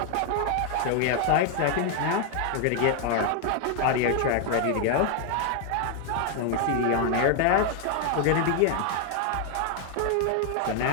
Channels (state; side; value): different; both; correlation 0.01